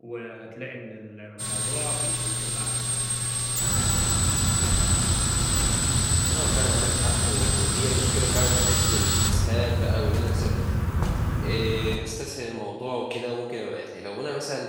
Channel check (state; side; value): identical; both; correlation 1.00